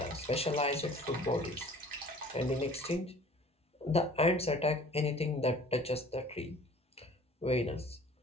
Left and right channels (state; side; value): normal; both; correlation 0.49